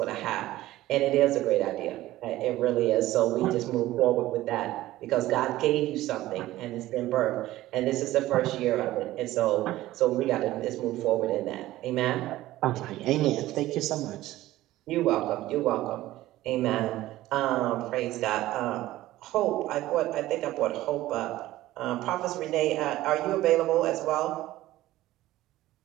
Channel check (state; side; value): quieter; left; 15.9 dB